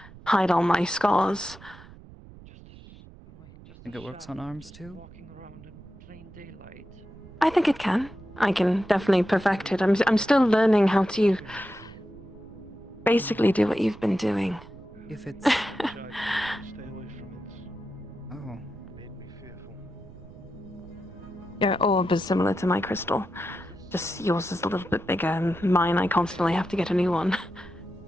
hide all my scars. Think it works on arms too? I think it can. I can definitely perfect it. I'm still learning how to basically do what you've been doing. If it's... Oh. Your orb is similar to my crystal. Just yours is a little bit bigger, and mine I constantly have to get a new one.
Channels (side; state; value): right; noise; rumble, 19 dB below the sound